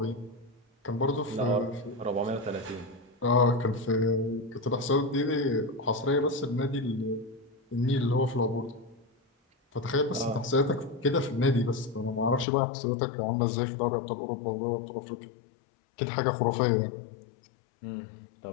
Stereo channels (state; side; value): drops out; right; at 12.5 s